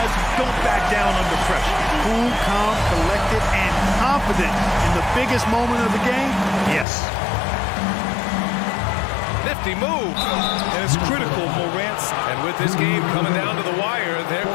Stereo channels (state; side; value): drops out; right; at 6.9 s